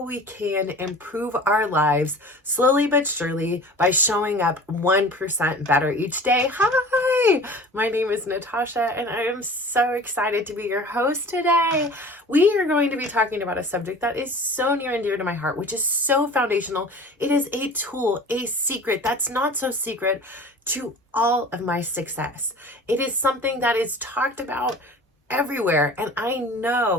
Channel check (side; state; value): both; normal; correlation 0.41